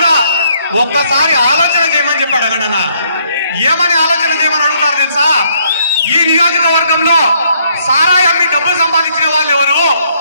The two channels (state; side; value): inverted; both; correlation -0.68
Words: ఒక్కసారి ఆలోచన చేయమని చెప్పాడు అన్న. ఏమని ఆలోచన చేయమని అడుగుతారు తెలుసా? ఈ నియోజకవర్గంలో సారాయి అమ్మి డబ్బులు సంపాదించిన వాళ్ళు ఎవరు?